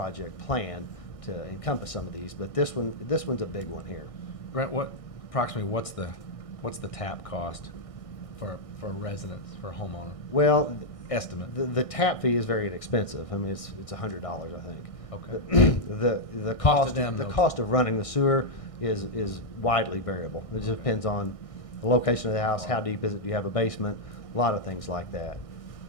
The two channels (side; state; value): right; late; 1.6 ms